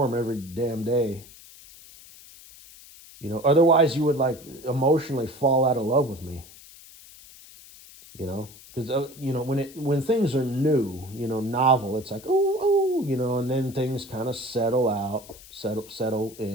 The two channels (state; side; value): noise; left; hiss, 20 dB below the sound